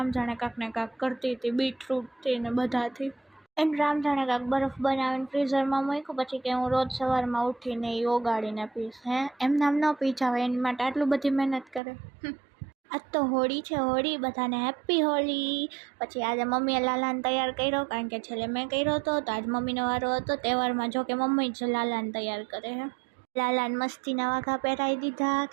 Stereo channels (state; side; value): drops out; left; at 11.8 s